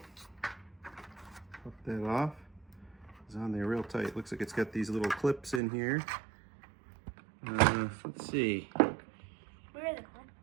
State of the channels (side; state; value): left; drops out; at 5.6 s